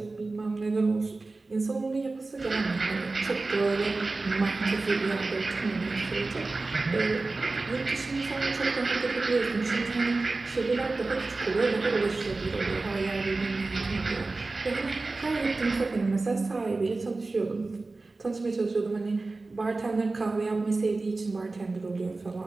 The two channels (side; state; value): left; quieter; 3.5 dB